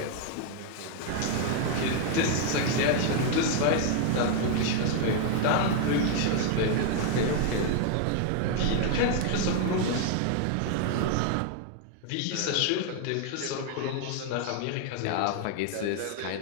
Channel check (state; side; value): different; both; correlation 0.00